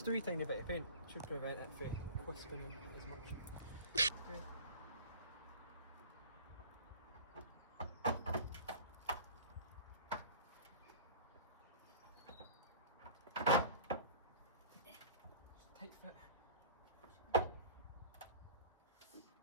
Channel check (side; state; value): both; inverted; correlation -0.40